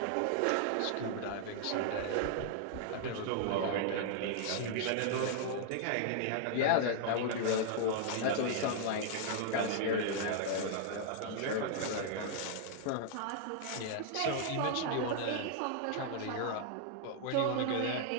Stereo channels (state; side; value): different; both; correlation -0.01